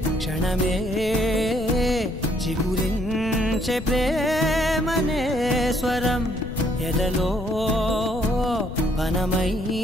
క్షణమే చిగురించే ప్రేమనే స్వరం ఎదలో వనమై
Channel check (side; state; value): left; noise; rumble, 10 dB below the sound